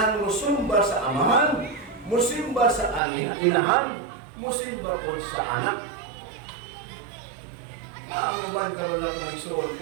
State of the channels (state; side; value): drops out; left; at 3.0 s